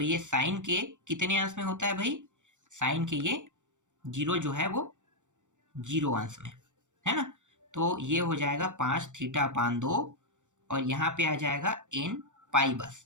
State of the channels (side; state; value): left; late; 0.85 ms